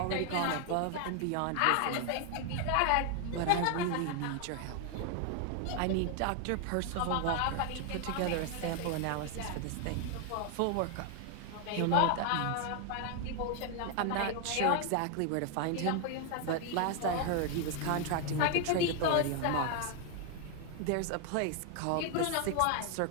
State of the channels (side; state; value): both; different; correlation 0.00